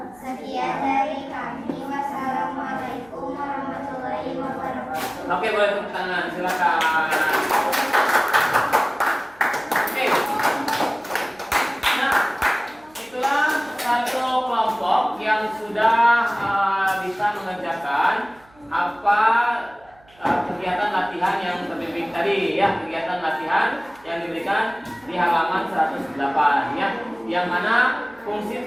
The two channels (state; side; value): noise; right; hum, 29 dB below the sound